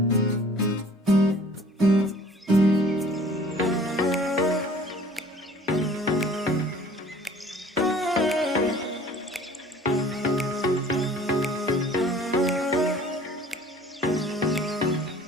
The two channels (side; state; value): both; normal; correlation 0.50